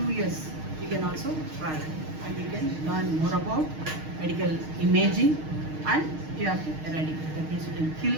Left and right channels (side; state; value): left; late; 6.4 ms